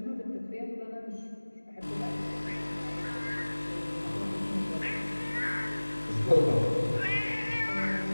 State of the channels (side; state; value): both; inverted; correlation -1.00